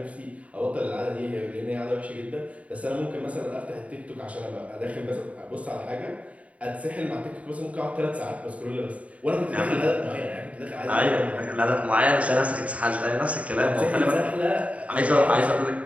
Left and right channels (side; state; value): left; late; 0.066 ms